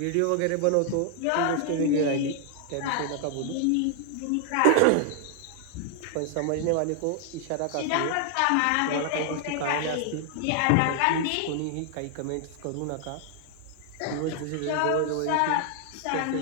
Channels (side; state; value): both; different; correlation 0.00